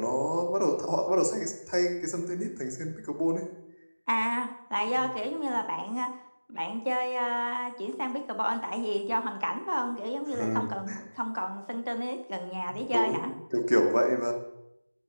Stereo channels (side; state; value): both; inverted; correlation -1.00